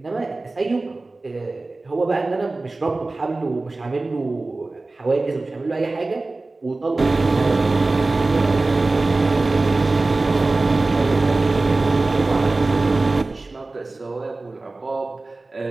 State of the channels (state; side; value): quieter; left; 3.2 dB